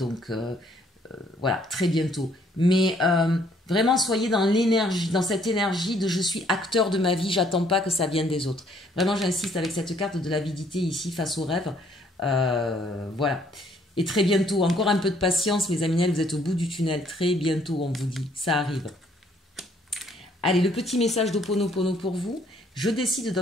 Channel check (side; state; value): both; normal; correlation 0.64